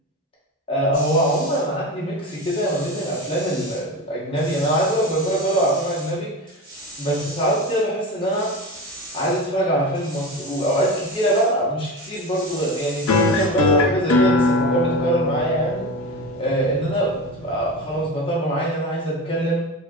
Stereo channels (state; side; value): normal; both; correlation 0.25